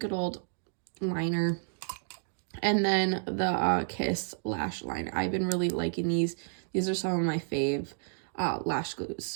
old liner. And then the Kiss Lash Liner. I've been really liking these. These are some of my fave lash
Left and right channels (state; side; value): silent; left; 57 dB below the other